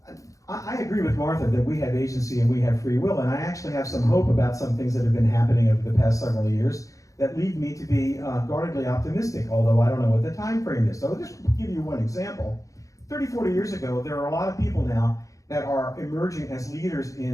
I agree with Martha that we have agency and we have free will, and I actually have some hope about some things that have been happening over the past several years that lead me to be guardedly optimistic, although I don't know what the time frame is. So I'll just give you one example. 30, 40 years ago, there are a lot of people now that are emerging as leaders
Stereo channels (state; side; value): late; right; 0.16 ms